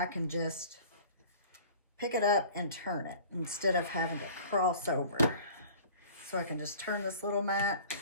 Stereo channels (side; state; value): both; inverted; correlation -0.45